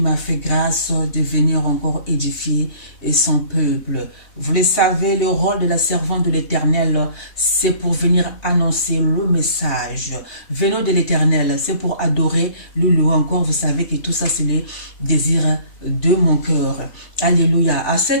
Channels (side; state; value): right; late; 3.3 ms